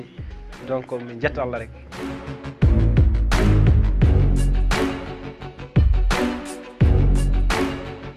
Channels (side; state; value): both; identical; correlation 1.00